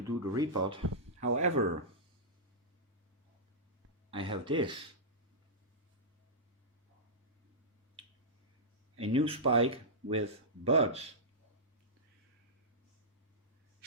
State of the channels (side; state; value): both; normal; correlation -0.13